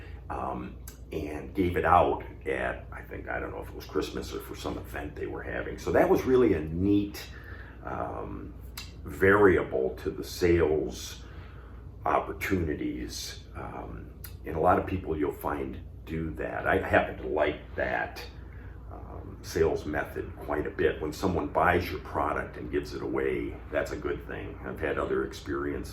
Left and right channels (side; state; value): both; identical; correlation 1.00